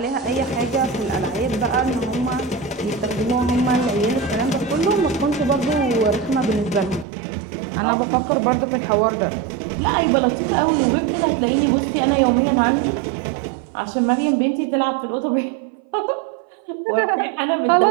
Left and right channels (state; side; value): drops out; left; at 7.1 s